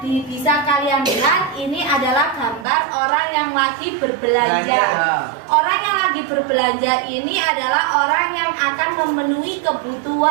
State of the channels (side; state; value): left; drops out; at 2.7 s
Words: Bisa kalian lihat ini adalah gambar orang yang lagi berbelanja. Orang yang lagi berbelanja ini adalah orang yang akan memenuhi